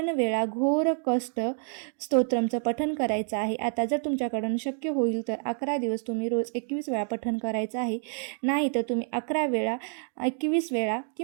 वेळा घोर कष्ट स्तोत्रमचं पठण करायचं आहे. आता जर तुमच्याकडून शक्य होईल तर 11 दिवस तुम्ही रोज 21 वेळा पठण करायचं आहे. नाही तर तुम्ही 11 वेळा 21 वेळा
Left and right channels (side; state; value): left; silent; 59 dB below the other